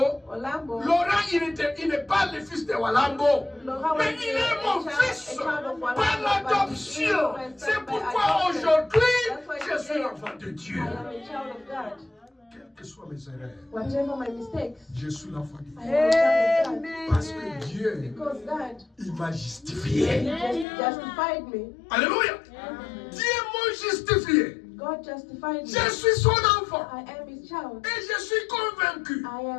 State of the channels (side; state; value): right; drops out; at 20.7 s